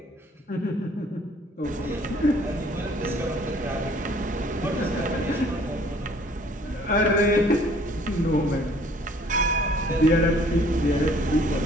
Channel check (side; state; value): both; normal; correlation 0.57